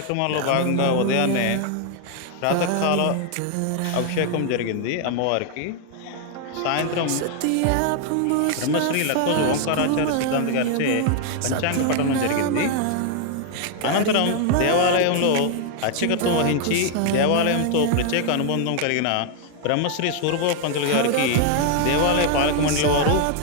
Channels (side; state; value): both; different; correlation 0.00